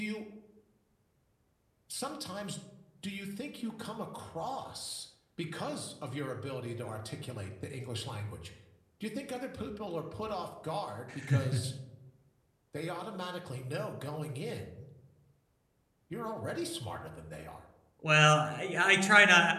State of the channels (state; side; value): identical; both; correlation 1.00